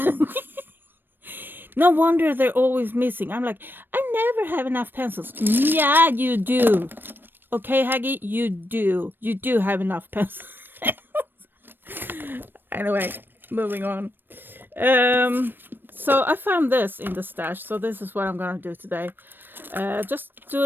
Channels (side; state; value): left; late; 0.095 ms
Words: No wonder they're always missing. I'm like, I never have enough pencils. Yeah, you do. Okay, Haggy, you do. You do have enough pencils. Anyway, moving on. So I found this in the stash. So this is what I'm going to do today. Just do